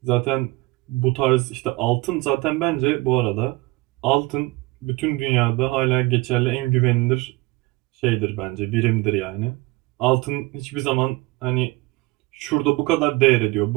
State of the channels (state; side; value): quieter; left; 22.1 dB